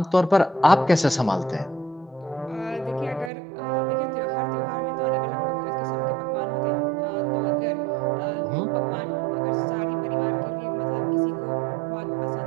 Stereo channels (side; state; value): left; drops out; at 3.3 s